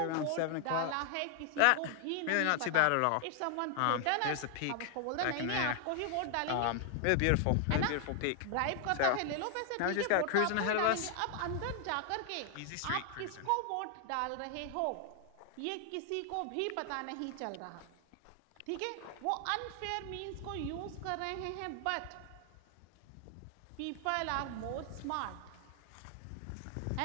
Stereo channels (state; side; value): different; both; correlation 0.00